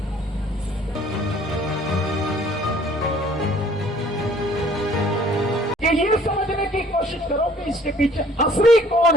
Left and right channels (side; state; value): both; normal; correlation 0.56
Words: कि ये समझने की कोशिश करो कि इसके पीछे असली